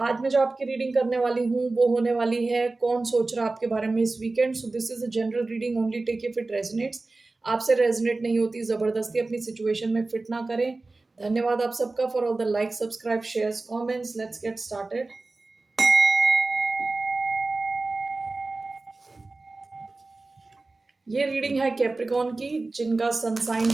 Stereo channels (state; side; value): quieter; left; 3.4 dB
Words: मैं जो आपकी रीडिंग करने वाली हूँ वो होने वाली है कौन सोच रहा है आपके बारे में इस weekend. So this is a general reading, only take if it resonates. आपसे रेजोनेट नहीं होती जबरदस्ती अपनी सिचुएशन में फिट ना करें। धन्यवाद आप सबका for all the like, subscribe, shares, comments. Let's get started. ये रीडिंग है कैप्रिकॉन की, जिनका सन साइन